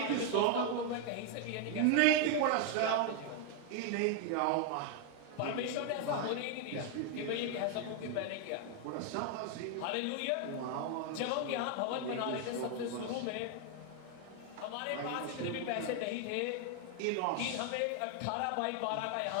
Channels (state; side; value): different; both; correlation 0.01